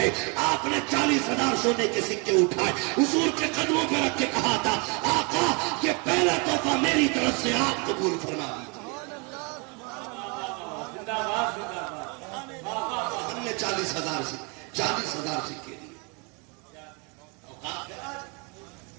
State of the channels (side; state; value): left; quieter; 32.4 dB